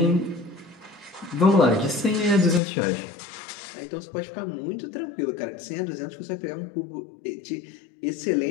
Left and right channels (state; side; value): drops out; right; at 2.6 s